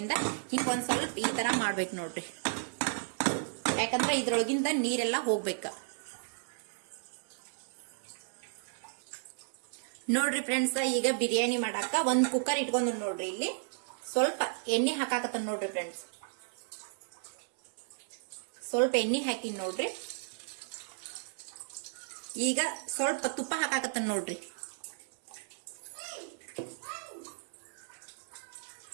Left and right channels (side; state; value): left; silent; 55 dB below the other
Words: ಹಿಂಗ್ ಒಂದ್ ಸ್ವಲ್ಪ ಈ ತರ ಮಾಡ್ಬೇಕು ನೋಡ್ರಿ, ಯಾಕಂದ್ರೆ ಇದ್ರೊಳಗಿಂದ ನೀರೆಲ್ಲಾ ಹೋಗ್ಬೇಕ ನೋಡ್ರಿ ಫ್ರೆಂಡ್ಸ್. ಈಗ ಬಿರಿಯಾನಿ ಮಾಡಾಕ ಒಂದ್ ಕುಕ್ಕರ್ ಇಟ್ಕೊಂಡ್ ನೋಡ್ರಿ. ಇಲ್ಲಿ ಸ್ವಲ್ಪ ಎಣ್ಣೆ ಹಾಕಾಕತ್ತ ನೋಡ್ರಿ ಫ್ರೆಂಡ್ಸ್. ಸ್ವಲ್ಪ ಎಣ್ಣೆ ಹಾಕಿನ್ ನೋಡ್ರಿ. ಈಗ ಸ್ವಲ್ಪ ತುಪ್ಪ ಹಾಕಾಕತ್ತ ನೋಡ್ರಿ.